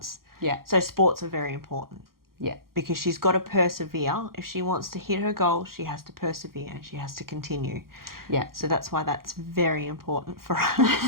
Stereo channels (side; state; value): left; late; 0.92 ms